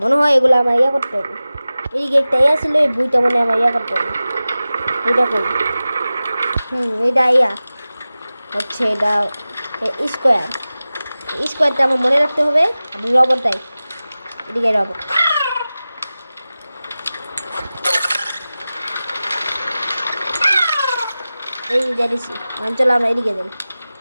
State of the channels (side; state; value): both; inverted; correlation -0.96